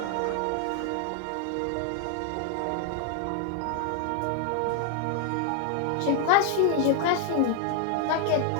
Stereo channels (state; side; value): different; both; correlation 0.00